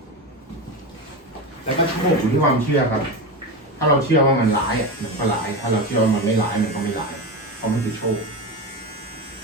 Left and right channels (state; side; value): normal; both; correlation 0.20